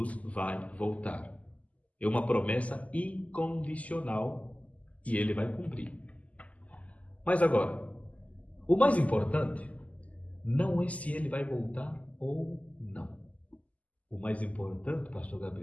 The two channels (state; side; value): late; right; 0.071 ms